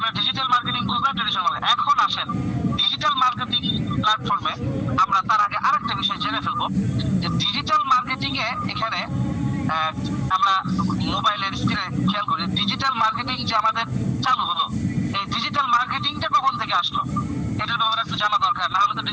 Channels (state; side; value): identical; both; correlation 1.00